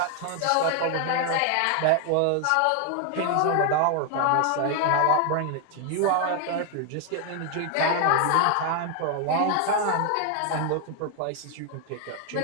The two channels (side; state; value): both; different; correlation 0.00